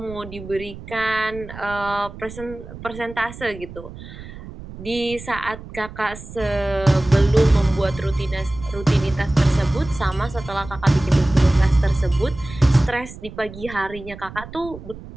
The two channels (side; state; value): right; noise; rumble, 14 dB below the sound